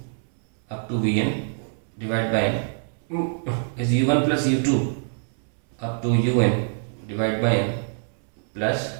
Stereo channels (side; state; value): left; silent; 62 dB below the other